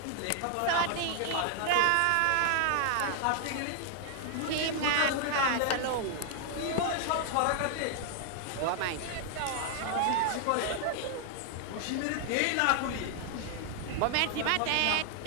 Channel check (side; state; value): both; different; correlation 0.00